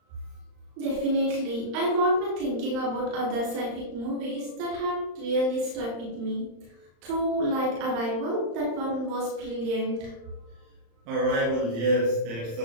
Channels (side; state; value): left; late; 35 ms